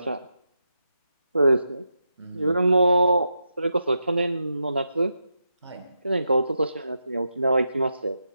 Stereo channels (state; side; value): inverted; both; correlation -0.86